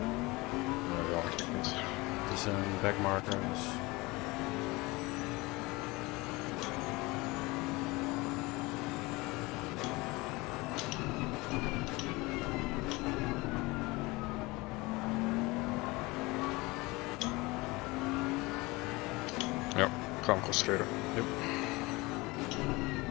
Ja, eigenlijk niet. Het is een backmarker, dus... Ja, ik ga hem concentreren. Yep.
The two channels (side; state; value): right; quieter; 23.0 dB